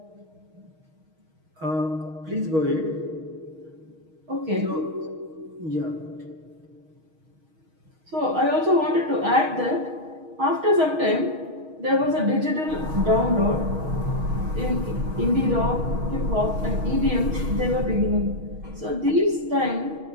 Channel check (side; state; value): left; late; 6.3 ms